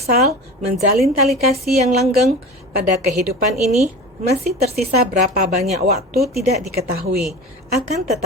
menjalin tali kasih yang langgeng pada kehidupan ini, masih tersisa berapa banyak waktu tidak diketahui. Akan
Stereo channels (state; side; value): normal; both; correlation 0.33